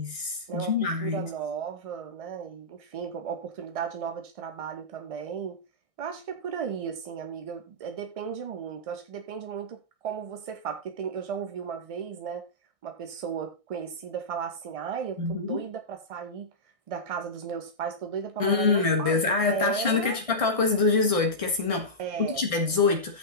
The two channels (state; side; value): late; left; 1.6 ms